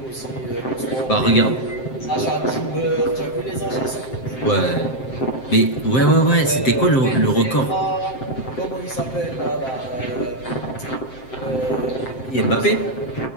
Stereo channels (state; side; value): late; right; 7.7 ms